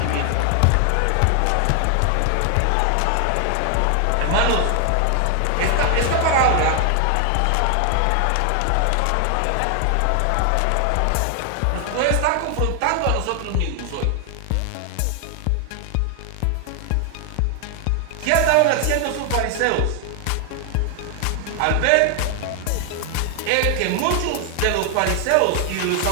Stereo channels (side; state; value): both; different; correlation 0.00